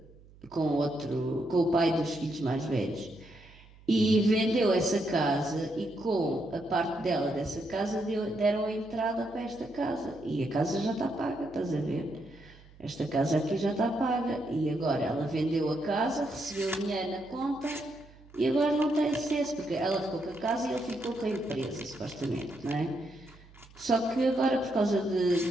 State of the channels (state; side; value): noise; right; hum, 24 dB below the sound